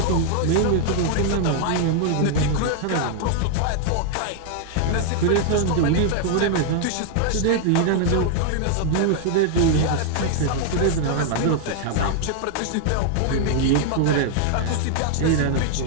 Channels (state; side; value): different; both; correlation 0.00